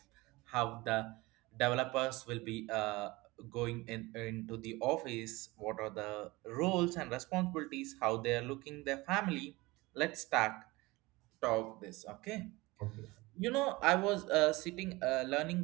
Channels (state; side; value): quieter; left; 21.8 dB